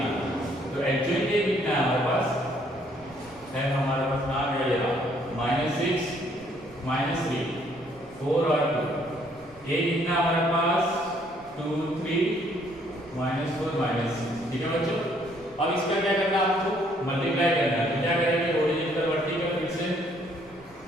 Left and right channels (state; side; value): noise; right; rumble, 26 dB below the sound